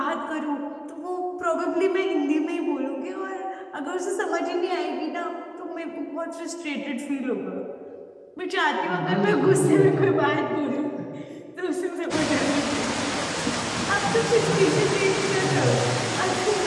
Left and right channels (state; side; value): identical; both; correlation 1.00